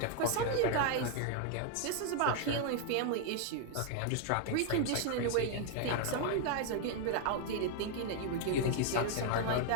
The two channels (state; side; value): different; both; correlation 0.00